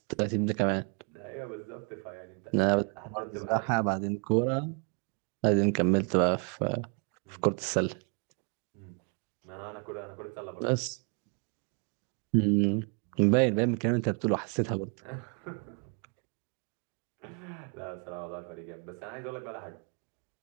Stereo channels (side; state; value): left; quieter; 37.7 dB